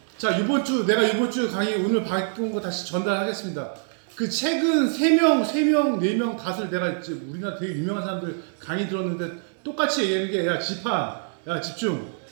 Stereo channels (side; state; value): left; silent; digital silence